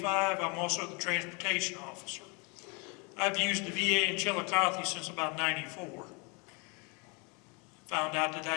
I'm also the transportation officer. I've used the VA in Chillicothe since about '94. Found out that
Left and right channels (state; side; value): quieter; right; 31.8 dB